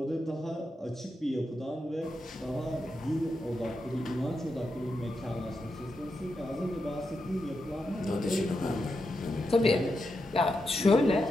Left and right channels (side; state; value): both; normal; correlation 0.86